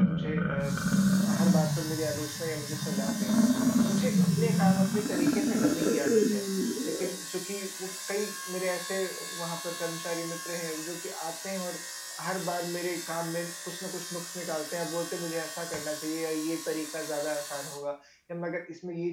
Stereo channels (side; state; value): both; identical; correlation 1.00